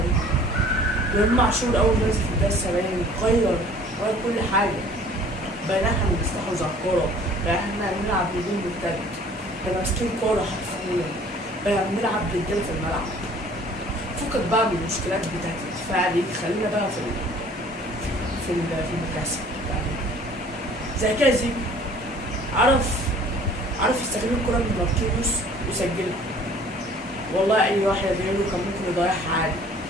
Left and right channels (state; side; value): normal; both; correlation 0.52